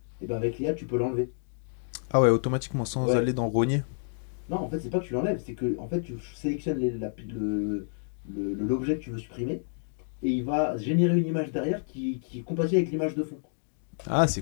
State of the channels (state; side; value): silent; right; digital silence